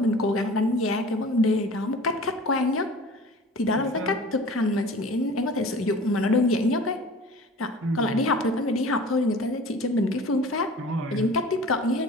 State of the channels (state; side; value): normal; both; correlation 0.42